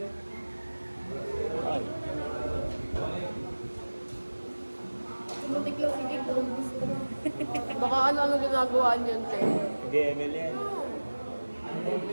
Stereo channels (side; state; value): both; inverted; correlation -1.00